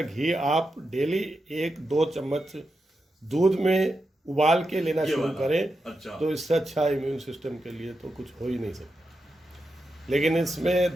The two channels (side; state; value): both; normal; correlation 0.88